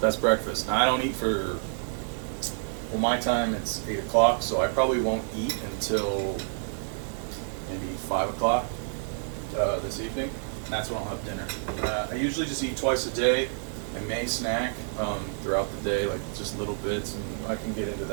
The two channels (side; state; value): left; silent; 59 dB below the other